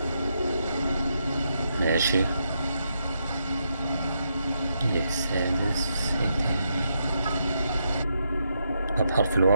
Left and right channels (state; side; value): inverted; both; correlation -0.81